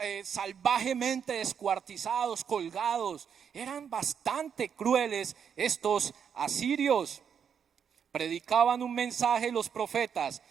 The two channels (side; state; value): left; quieter; 7.5 dB